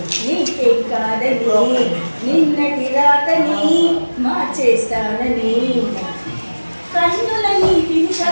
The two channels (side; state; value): both; inverted; correlation -1.00